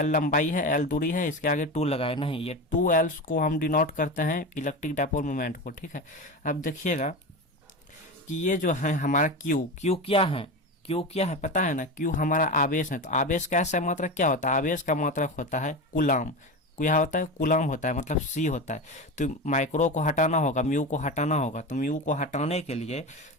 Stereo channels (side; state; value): both; normal; correlation 0.23